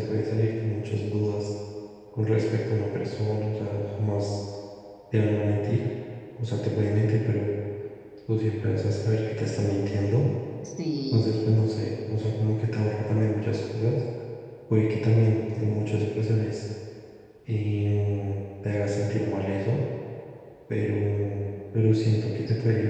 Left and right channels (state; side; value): identical; both; correlation 1.00